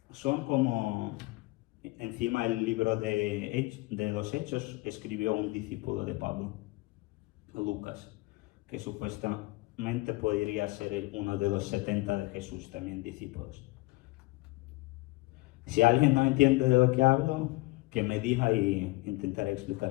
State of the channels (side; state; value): right; quieter; 22.4 dB